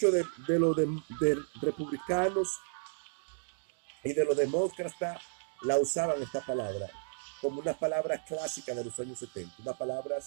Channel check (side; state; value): left; silent; digital silence